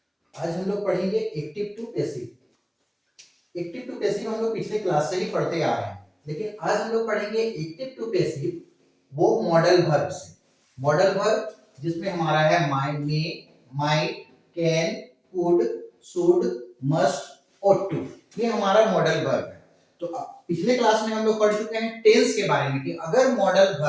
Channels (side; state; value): both; identical; correlation 1.00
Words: आज हम लोग पढ़ेंगे active to passive. Active to passive हम लोग पिछले क्लास से ही पढ़ते आ रहे हैं, लेकिन आज हम लोग पढ़ेंगे एक्टिव टू पैसिव वो मॉडल वर्ब से। मॉडल वर्ब जिसमें हमारा है might, may, might, can, could, should, must और टू। ये हमारा मॉडल वर्ब है। तो पिछले क्लास में हम लोग पढ़ चुके हैं टेंस के बारे में कि अगर मॉडल